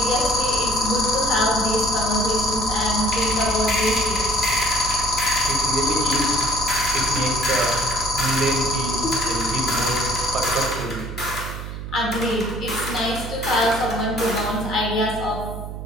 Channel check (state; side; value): noise; right; hum, 8 dB below the sound